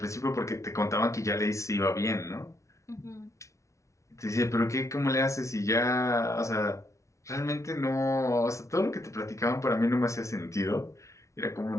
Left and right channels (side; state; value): right; late; 0.14 ms